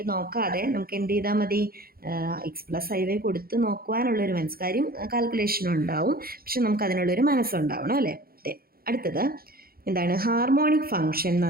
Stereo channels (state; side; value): late; left; 0.44 ms